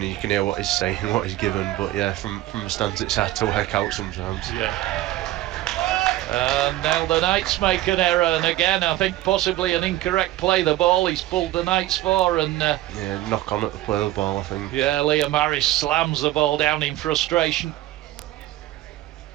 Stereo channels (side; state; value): left; quieter; 15.5 dB